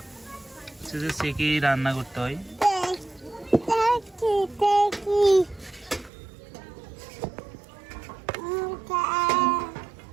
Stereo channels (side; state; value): left; drops out; at 6.1 s